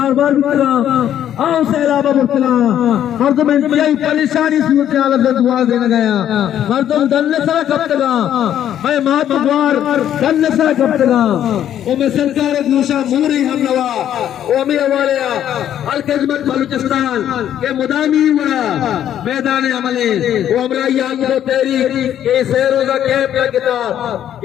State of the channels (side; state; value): right; quieter; 10.6 dB